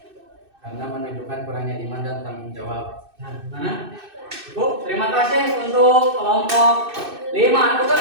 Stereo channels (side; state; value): left; late; 2.6 ms